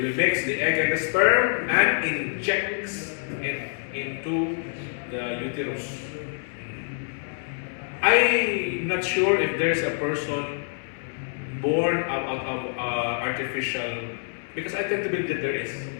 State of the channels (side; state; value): right; silent; 61 dB below the other